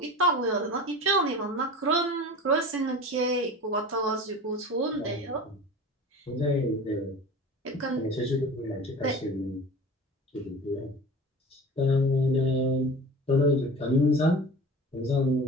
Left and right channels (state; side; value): normal; both; correlation 0.36